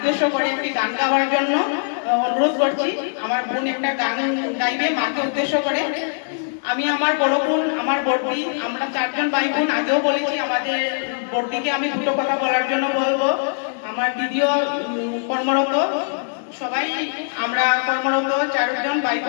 করে একটি গান গাওয়ার জন্য অনুরোধ করছি। আমার বোন একটা গান গাইবে মাকে উদ্দেশ্য করে। আমি আমার বড় বোন, আমার বড়দি, আমরা চারজন ভাই বোন, আগেও বলেছি আমাদের বড়দিকে আমি দুটো কথা বলার জন্য বলবো। আমার দিদিও কর্মরত, সবাই আমরা কর্মরত চারজন ভাই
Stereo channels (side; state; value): right; silent; digital silence